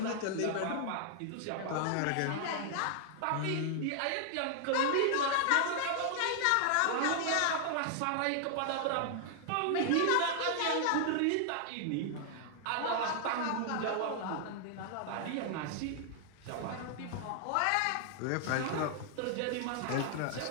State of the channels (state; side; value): different; both; correlation 0.00